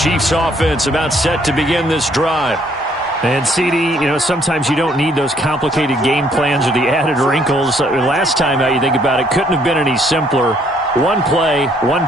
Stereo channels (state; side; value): normal; both; correlation 0.65